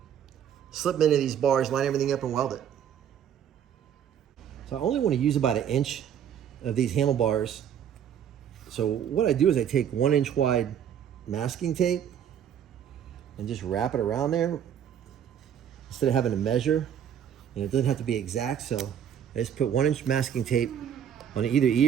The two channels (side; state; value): left; quieter; 9.0 dB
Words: slip them into these bars, line everything up, and weld it. So I only want to use about 1 inch of these handlebars. So what I do is I take 1-inch wide masking tape and just wrap it around there instead of having to measure. And it doesn't have to be exact, so I just put 1-inch masking tape on either